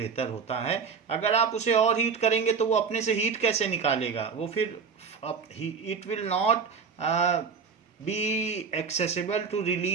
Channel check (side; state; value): left; quieter; 5.8 dB